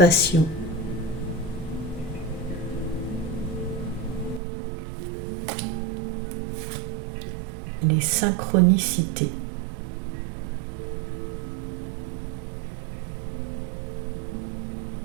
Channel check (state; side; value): drops out; left; at 4.4 s